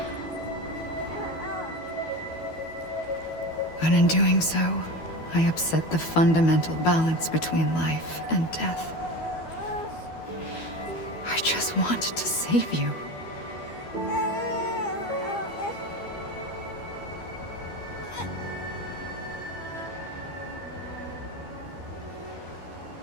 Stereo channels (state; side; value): late; right; 12 ms